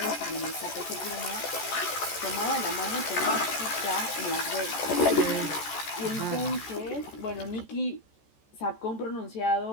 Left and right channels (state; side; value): late; right; 14 ms